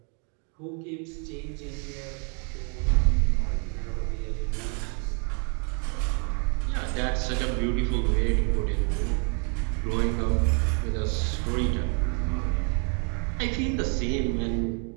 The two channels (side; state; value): left; quieter; 38.6 dB